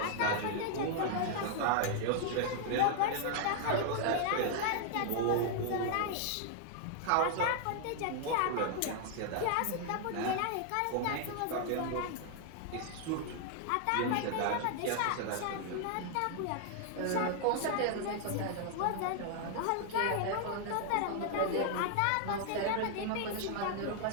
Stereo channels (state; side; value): different; both; correlation 0.00